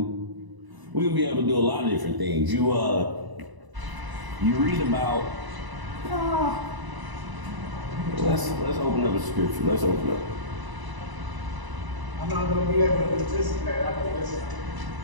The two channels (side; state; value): left; late; 1.0 ms